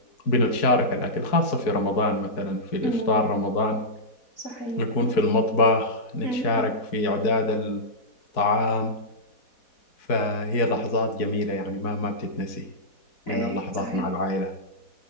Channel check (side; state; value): right; late; 4.6 ms